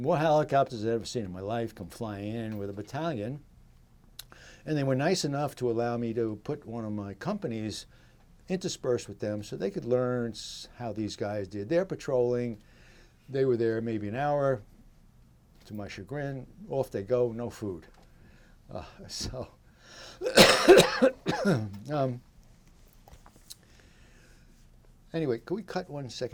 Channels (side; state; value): both; identical; correlation 1.00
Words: helicopters I've ever seen in my life, come flying in with a battalion. And they were nice enough to allow me to put one of my companies interspersed with them so they could learn how these guys did their patrolling. They were there maybe an hour. To my chagrin, off they go, no food. Anyway, can we cut 1